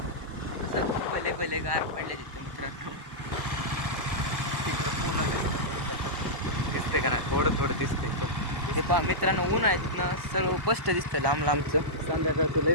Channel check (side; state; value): left; late; 1.0 ms